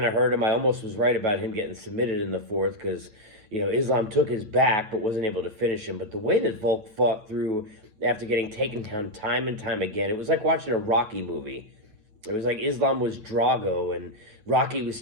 of hurt him. I almost was right about him getting submitted in the fourth because, Islam took his back but wasn't able to finish him. But the way that Volk fought through after getting taken down time and time again, it was like watching a Rocky movie. It was like Islam was Drago and Rocky was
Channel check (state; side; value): late; left; 9.3 ms